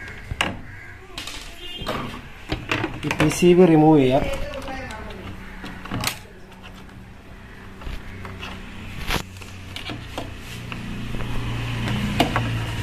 ഈ PCB റിമൂവ് ചെയ്യാം.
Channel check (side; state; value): both; identical; correlation 1.00